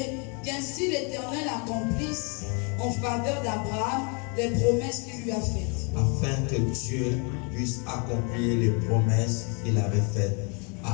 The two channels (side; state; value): right; quieter; 34.4 dB